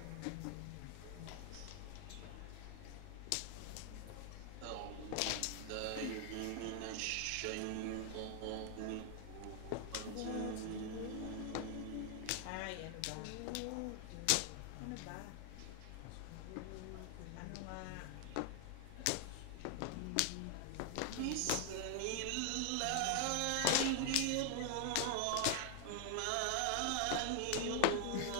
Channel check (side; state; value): both; different; correlation 0.00